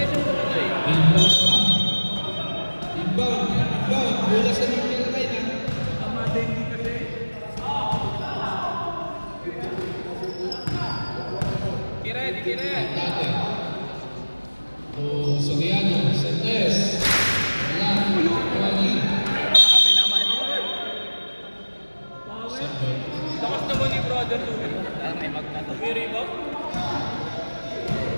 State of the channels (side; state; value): both; inverted; correlation -1.00